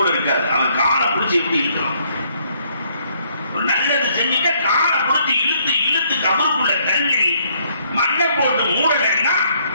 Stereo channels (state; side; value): inverted; both; correlation -0.67